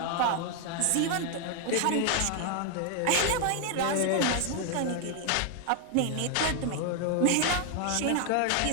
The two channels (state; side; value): different; both; correlation 0.00